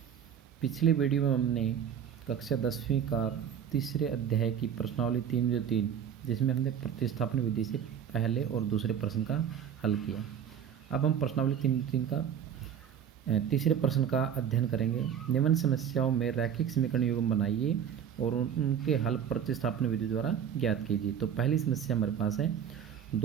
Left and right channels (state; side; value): quieter; left; 8.5 dB